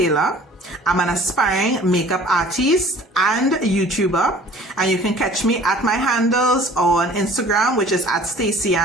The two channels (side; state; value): both; normal; correlation 0.49